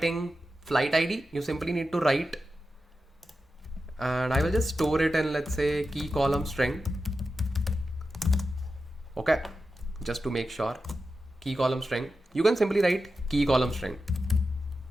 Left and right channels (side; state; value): both; normal; correlation 0.91